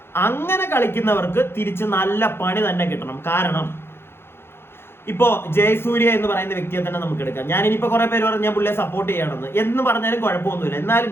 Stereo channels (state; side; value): late; right; 0.11 ms